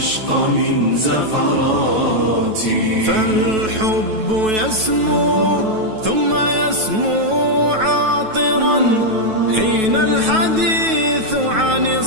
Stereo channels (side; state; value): left; late; 9.2 ms